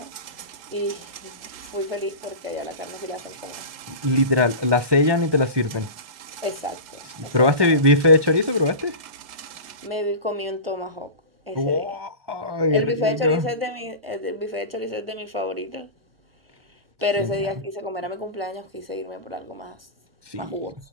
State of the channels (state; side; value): late; left; 1.9 ms